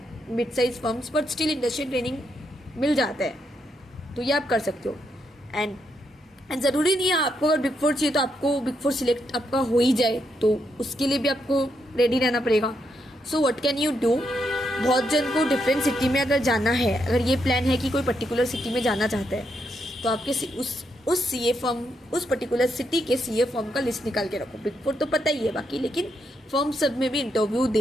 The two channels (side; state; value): both; normal; correlation 0.79